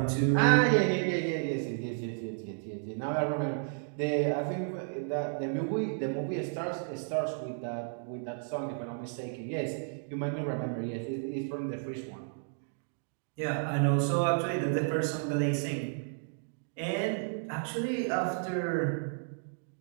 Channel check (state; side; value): silent; left; digital silence